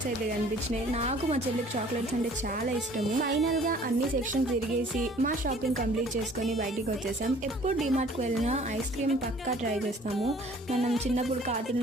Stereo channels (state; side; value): normal; both; correlation 0.53